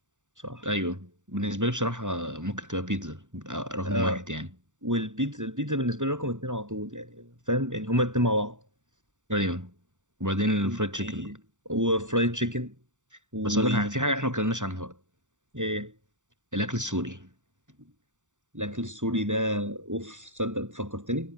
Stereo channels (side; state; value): left; late; 0.86 ms